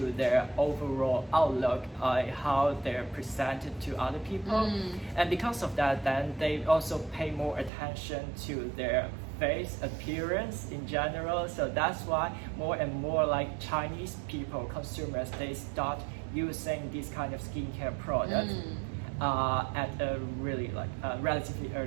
their overall outlook, how they're presented to other people. And because of that, then they also pay more attention to their face appearance in general. So that's why more and more like Chinese people, consumers, they start using this kind of skincare product at a really like relatively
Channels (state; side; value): drops out; left; at 7.7 s